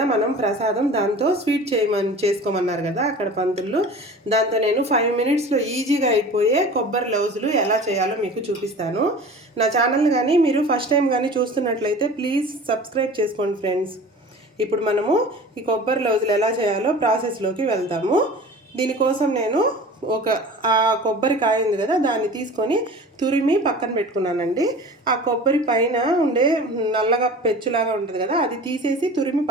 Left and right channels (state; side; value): normal; both; correlation 0.39